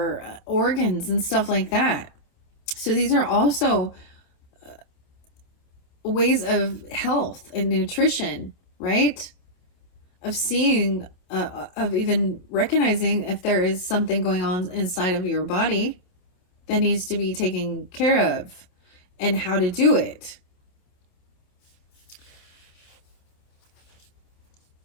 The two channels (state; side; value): late; right; 28 ms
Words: organs and stuff like that. So these are also ways of health and nutrition, right? Of seeing, of even recognizing if there is something going on inside of your body that needs to be taken care of, and how to do it.